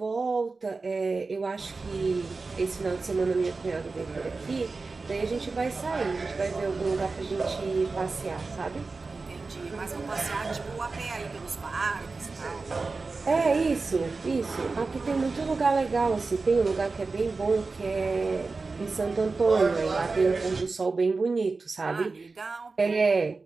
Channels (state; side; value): quieter; left; 4.0 dB